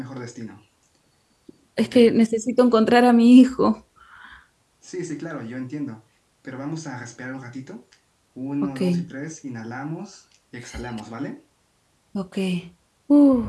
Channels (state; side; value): identical; both; correlation 1.00